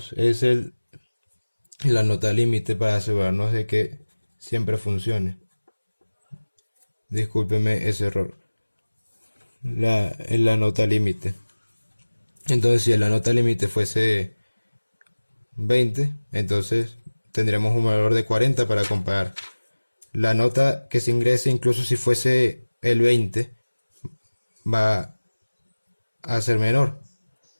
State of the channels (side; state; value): both; inverted; correlation -1.00